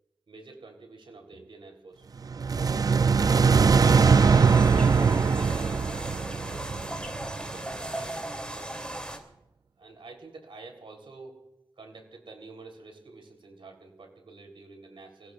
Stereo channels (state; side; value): quieter; left; 4.9 dB